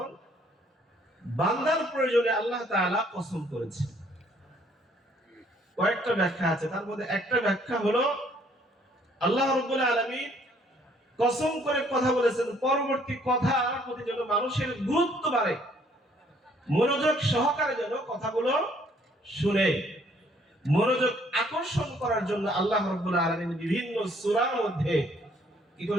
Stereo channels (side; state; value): both; normal; correlation 0.63